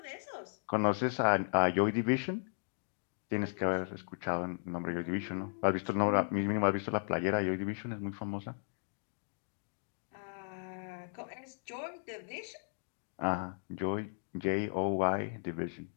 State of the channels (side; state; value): right; silent; digital silence